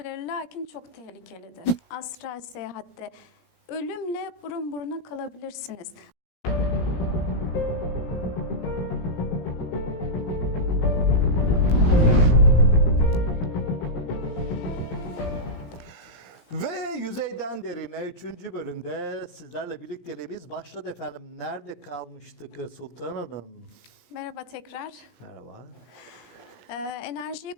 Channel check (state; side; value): late; right; 17 ms